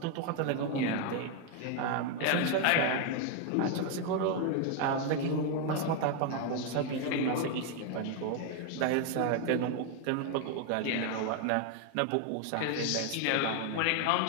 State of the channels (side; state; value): both; different; correlation 0.01